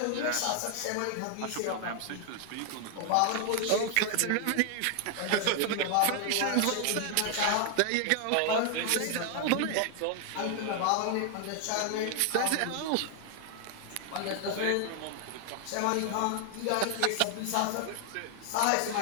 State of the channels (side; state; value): both; different; correlation 0.00